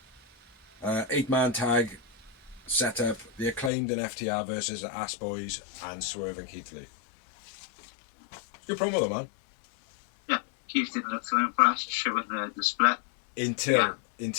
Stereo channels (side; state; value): right; drops out; at 3.7 s